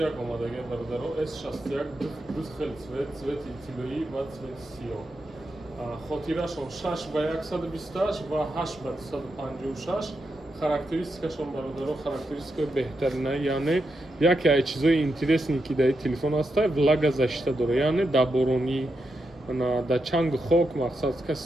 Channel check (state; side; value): normal; both; correlation 0.85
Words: омадаги бародаро. S61 ду хел цвети тиллоӣ ва цвети сиёҳ. Хотирашон 6/128 ва 8/256. Характеристикашон бародаро характеристикаи беҳтарина, яъне яке аз чизои интересни ки дар телефон аста влагозащита дора, яъне дар боронӣ, дар чангу хок мақсад каси